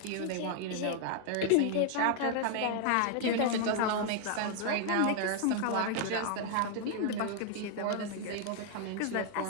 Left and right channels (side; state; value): both; different; correlation 0.00